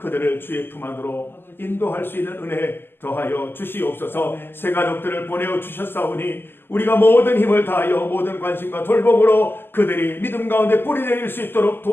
주의 품 안으로 인도할 수 있는 은혜 더하여 주시옵소서. 새 가족들을 보내어 주셨사오니 우리가 모든 힘을 다하여 모든 관심과 돌봄으로 그들이 믿음 가운데 뿌리 내릴 수 있도록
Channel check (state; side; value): late; right; 0.10 ms